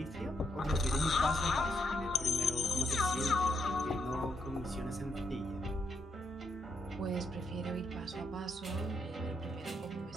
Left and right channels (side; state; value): both; normal; correlation 0.78